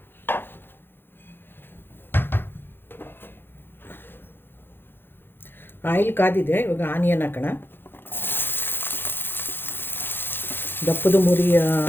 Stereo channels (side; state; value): right; late; 0.10 ms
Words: ಆಯಿಲ್ ಕಾದಿದೆ. ಇವಾಗ ಆನಿಯನ್ ಹಾಕೋಣ. ದಪ್ಪದು ಮುರಿ